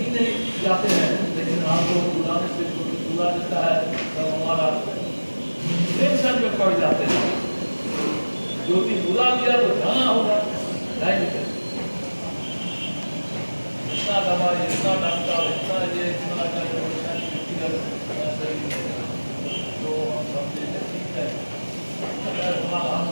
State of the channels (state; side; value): inverted; both; correlation -1.00